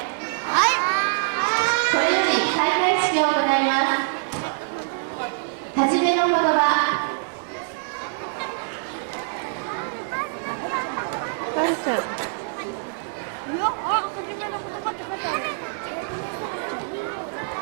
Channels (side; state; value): left; silent; digital silence